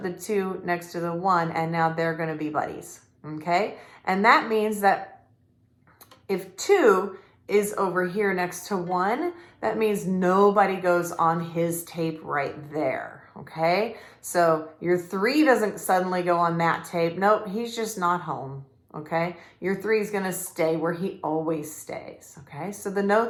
the 2 next to the 1, and now they're gonna be buddies, okay? And that means that if 2 is over here next to 1, that means nobody goes on his tape right there, okay? So your 3 doesn't suddenly go on that tape. Nope, he's just not home, okay? Your 3 is gonna stay where he always stays, okay? So the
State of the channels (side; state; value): both; identical; correlation 1.00